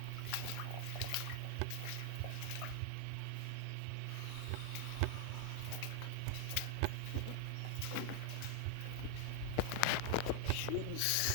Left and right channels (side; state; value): both; different; correlation 0.00